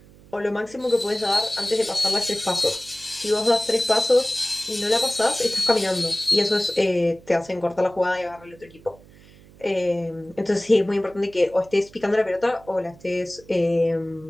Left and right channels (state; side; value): noise; right; hum, 24 dB below the sound